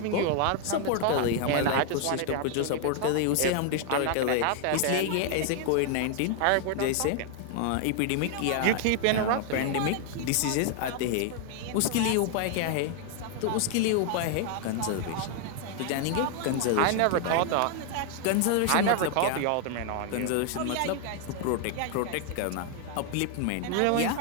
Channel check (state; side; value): different; both; correlation 0.00